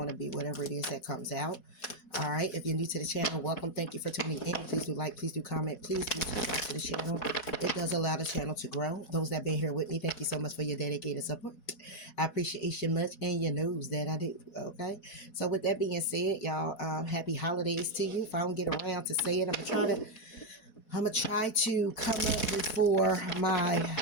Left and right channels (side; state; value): right; late; 4.2 ms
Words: to be whatever it is that comes out. All right. If you're new to the channel, welcome. Thank you for tuning in. Please do like, please do comment, please do subscribe to the channel. It does allow the channel to grow. Those that have been here with me, thank you so much for your dedicated support. I appreciate you much, and you knows that I do. Okay. So with that being said, y'all, happy holidays to you. If I don't get around to say it, I'm gonna try to come up before my